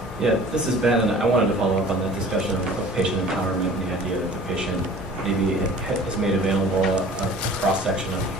Yeah, this is Ben, and I wanted to follow up on that discussion of patient empowerment and the idea that the patient maybe is made available a cross-section of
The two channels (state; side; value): normal; both; correlation 0.46